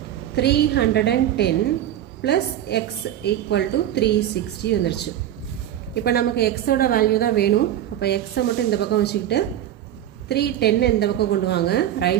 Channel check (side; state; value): left; quieter; 11.6 dB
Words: 310 ப்ளஸ் எக்ஸ் ஈக்குவல் டு 360 வந்துருச்சு. இப்போ நமக்கு எக்ஸோட வேல்யூ தான் வேணும். அப்போ எக்ஸை மட்டும் இந்த பக்கம் வச்சுக்கிட்டு 310 இந்த பக்கம் கொண்டு வாங்க,